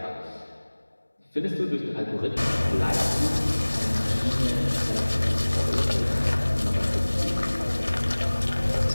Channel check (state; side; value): inverted; both; correlation -1.00